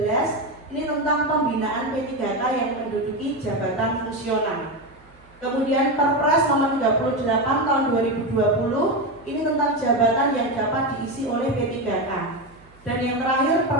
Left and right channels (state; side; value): noise; right; hum, 27 dB below the sound